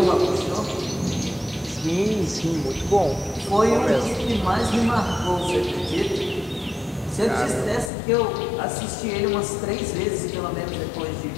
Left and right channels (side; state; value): right; drops out; at 7.9 s